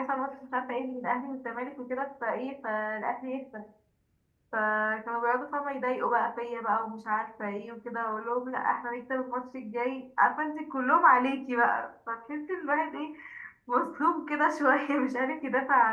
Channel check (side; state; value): both; identical; correlation 1.00